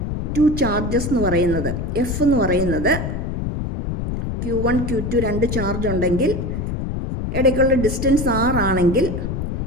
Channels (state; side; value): noise; left; rumble, 3 dB below the sound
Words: two charges എന്ന് പറയുന്നത് എഫ് എന്ന് പറയുന്നത് Q1 Q2 രണ്ട് ചാർജ് ഉണ്ടെങ്കിൽ ഇടയ്ക്കുള്ള ഡിസ്റ്റൻസ് R ആണെങ്കിൽ